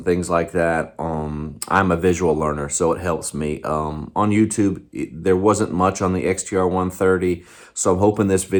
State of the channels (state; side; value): identical; both; correlation 1.00